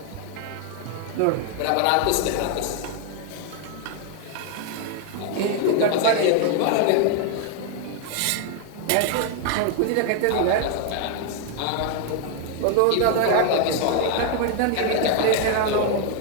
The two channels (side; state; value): both; different; correlation 0.00